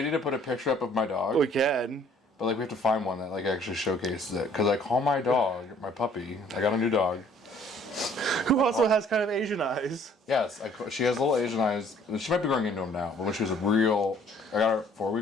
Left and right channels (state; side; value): normal; both; correlation 0.58